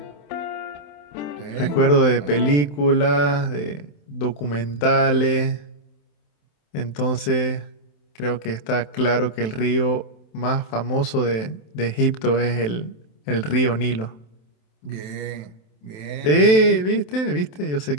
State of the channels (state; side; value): late; right; 27 ms